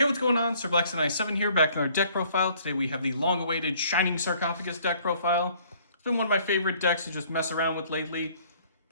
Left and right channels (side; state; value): both; inverted; correlation -0.59